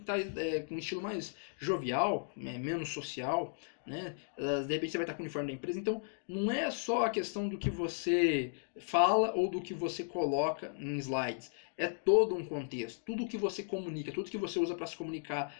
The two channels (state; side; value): silent; right; digital silence